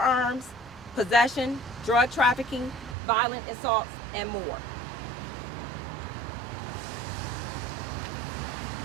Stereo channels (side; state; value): left; drops out; at 3.0 s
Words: possession, drug trafficking, violent assaults, and more.